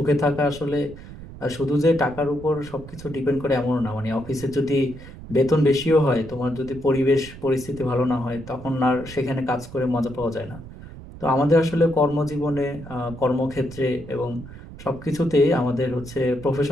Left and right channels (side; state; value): right; noise; rumble, 15 dB below the sound